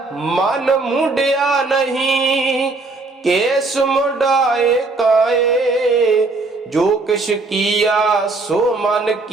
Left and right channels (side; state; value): left; quieter; 3.5 dB